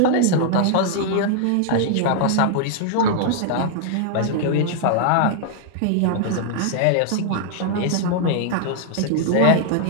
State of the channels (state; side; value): different; both; correlation -0.01